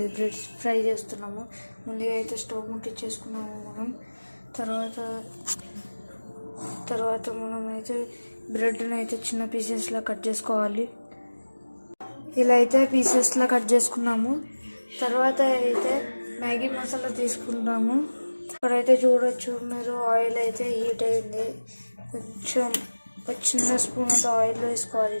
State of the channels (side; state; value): both; inverted; correlation -1.00